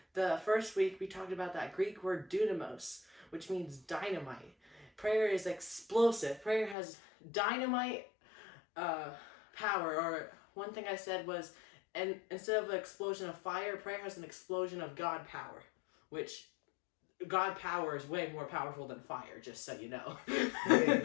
The first week we talked about that Greek word dunamos, which means dynamite. Prayer is explosive. Prayer has dynamite power. Or one thing I said was, and instead of an explosion of fire, prayer has an explosion of God power, which God power is way more powerful than fire, just so you know.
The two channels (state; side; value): drops out; right; at 6.8 s